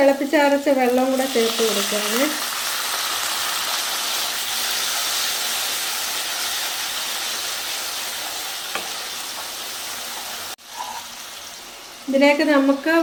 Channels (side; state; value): both; identical; correlation 1.00